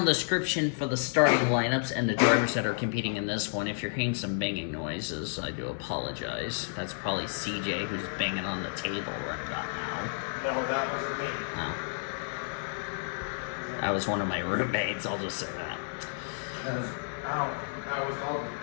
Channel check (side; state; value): right; silent; digital silence